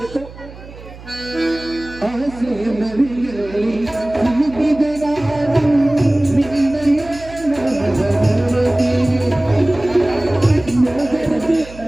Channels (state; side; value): noise; right; hum, 17 dB below the sound